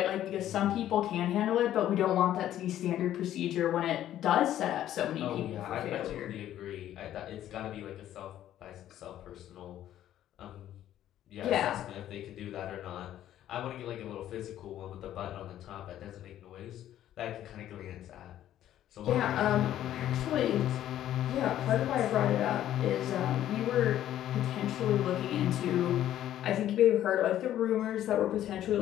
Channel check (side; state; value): right; quieter; 12.1 dB